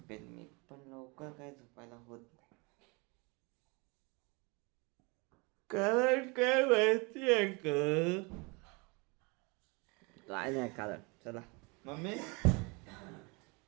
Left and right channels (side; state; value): left; quieter; 29.1 dB